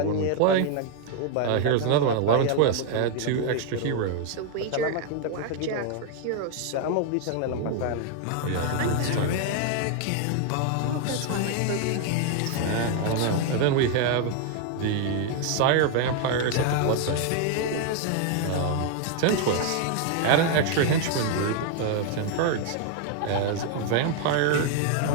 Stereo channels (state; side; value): different; both; correlation 0.00